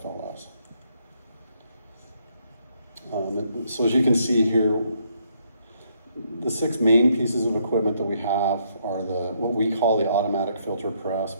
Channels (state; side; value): inverted; both; correlation -0.72